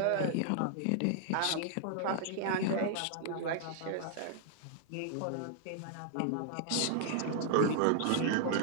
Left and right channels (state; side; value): different; both; correlation 0.00